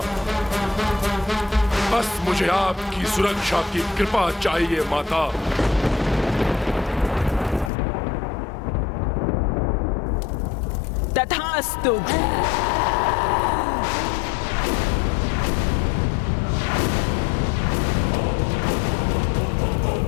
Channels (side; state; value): right; drops out; at 7.7 s